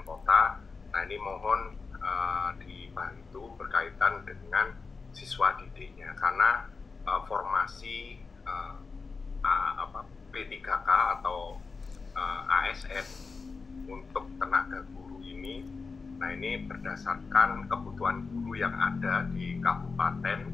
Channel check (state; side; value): quieter; right; 4.5 dB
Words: kota. Nah, ini mohon dibantu berkaitan dengan siswa didiknya, karena formasi P3K atau ASN untuk tenaga guru ini, nah ini berdasarkan kebutuhan guru yang ada di kabupaten,